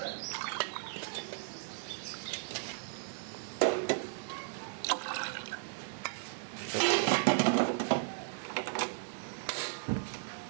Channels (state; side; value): silent; left; 54 dB below the other